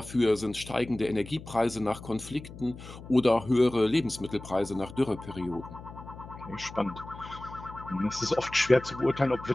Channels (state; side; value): noise; left; hum, 15 dB below the sound